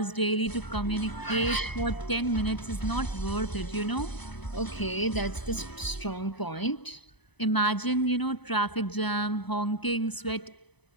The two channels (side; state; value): right; late; 0.99 ms